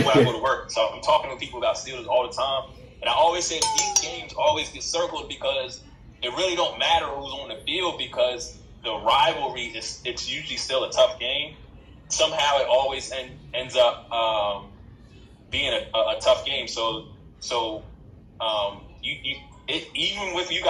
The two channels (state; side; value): identical; both; correlation 1.00